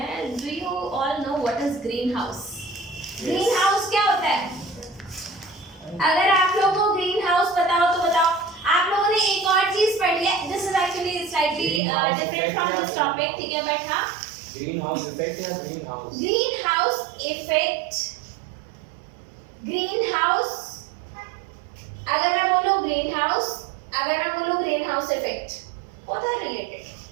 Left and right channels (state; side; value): drops out; left; at 11.8 s